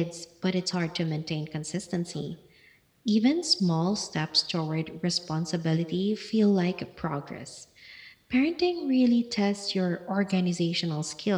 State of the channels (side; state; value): both; identical; correlation 1.00